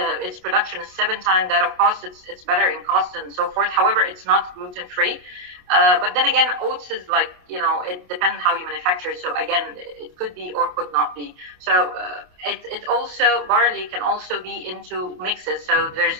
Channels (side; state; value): left; late; 28 ms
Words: Its production is 7 times that of cost. It's better in cost and so forth. However, it's not gluten-free. But then again, oats is like, it depends how you manufacture it. So again, it could be or could not be. So it also, barley can also be into mixes. So there's